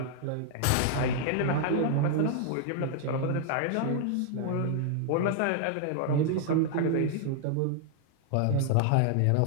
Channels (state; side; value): different; both; correlation 0.00